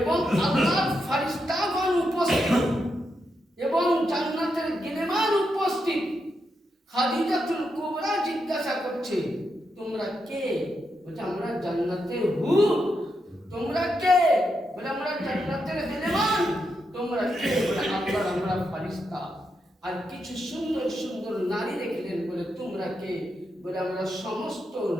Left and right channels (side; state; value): both; normal; correlation 0.84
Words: আল্লাহর ফেরেশতাগণ উপস্থিত এবং জান্নাতের গিলেমান উপস্থিত। খাদিজাতুল কুবরা জিজ্ঞাসা করছে, তোমরা কে? বলছে আমরা জান্নাতের হুর। তোমরা কে? বলে আমরা জান্নাতের গিলেমান। তোমরা কে? বলে আল্লাহর আমরা ফেরেশতা। আর কিছু সুন্দর সুন্দর নারী দেখলেন, বলে তোমরা কে? বলে আমরা সমস্ত